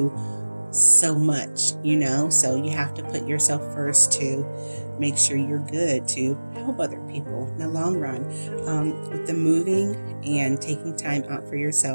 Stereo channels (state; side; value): inverted; both; correlation -1.00